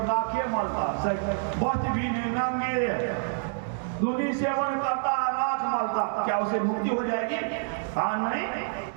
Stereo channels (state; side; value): silent; left; digital silence